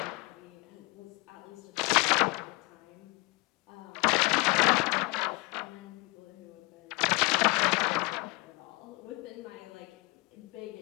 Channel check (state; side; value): quieter; right; 26.7 dB